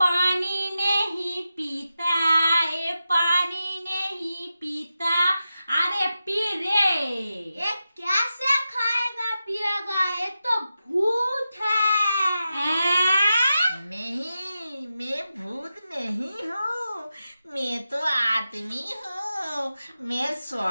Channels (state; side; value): inverted; both; correlation -0.91